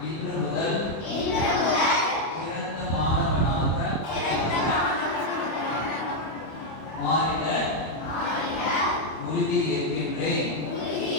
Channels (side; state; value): right; late; 25 ms